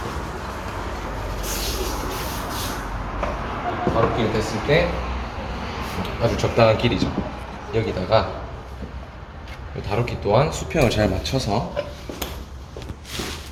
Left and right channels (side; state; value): both; identical; correlation 1.00